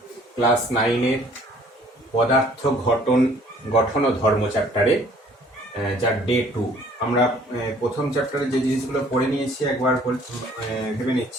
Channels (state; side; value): normal; both; correlation 0.57